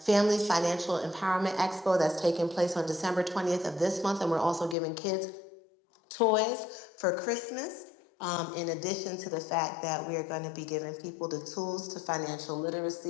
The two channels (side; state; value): right; drops out; at 4.8 s